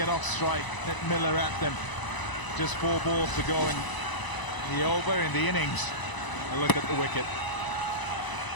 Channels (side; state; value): right; late; 1.0 ms